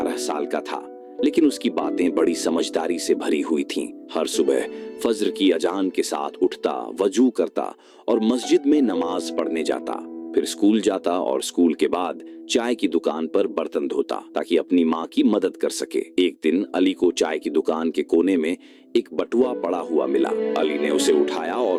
साल का था, लेकिन उसकी बातें बड़ी समझदारी से भरी हुई थीं। हर सुबह फज्र की अजान के साथ उठता, वजू करता और मस्जिद में नमाज पढ़ने जाता। फिर स्कूल जाता और स्कूल के बाद चाय की दुकान पर बर्तन धोता ताकि अपनी माँ की मदद कर सके। एक दिन अली को चाय की दुकान के कोने में एक बटुआ पड़ा हुआ मिला। अली ने उसे उठाया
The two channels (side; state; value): both; identical; correlation 1.00